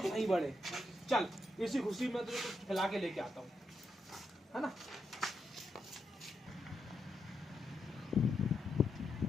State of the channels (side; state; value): both; normal; correlation 0.83